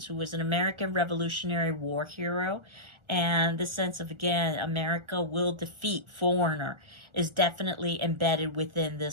who was an American Revolutionary War hero. And the sense of, again, America will defeat foreigner is definitely embedded within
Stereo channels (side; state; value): left; late; 1.4 ms